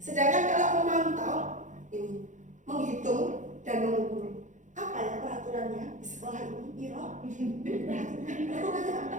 Sedangkan kalau memantau ini menghitung dan mengukur, apa ya peraturannya di sekolah ini? Peraturannya apa?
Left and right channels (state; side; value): late; left; 0.36 ms